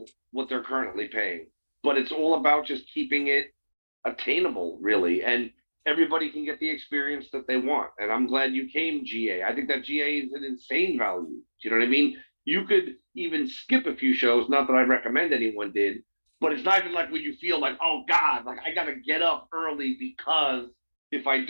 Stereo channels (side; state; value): both; inverted; correlation -1.00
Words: what they're currently paying. But it's all about just keeping it attainable, really. And everybody can get the experience that they want. And I'm glad you came, GA. I think that GA is an insane value. Do you know what I mean? You could even skip a few shows, not that I recommend anyone did, but it's not even like when you feel like, oh God, like I gotta get up early because if I